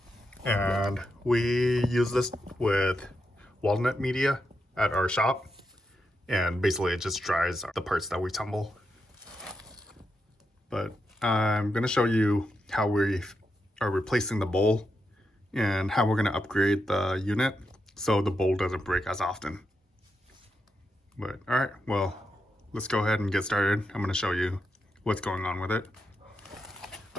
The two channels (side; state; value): both; normal; correlation 0.85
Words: And we use this with walnut media at our shop. And basically it just dries the parts that we tumble. But I'm going to show you how we are replacing the bowl and how we're going to upgrade the unit so the bowl doesn't break as often. But all right, well, let's go ahead and get started. I'm going to show you what's going on with it.